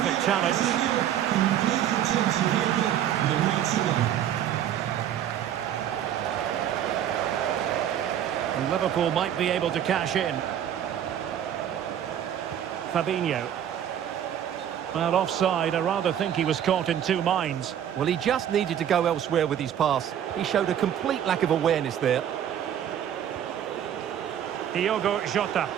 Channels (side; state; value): left; quieter; 10.2 dB